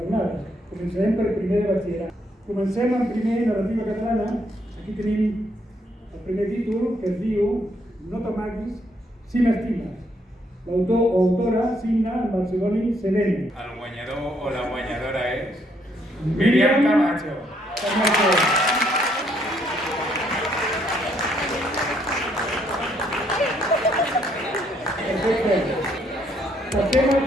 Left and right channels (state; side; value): normal; both; correlation 0.71